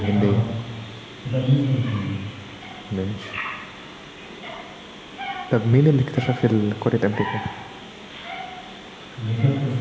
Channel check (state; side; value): identical; both; correlation 1.00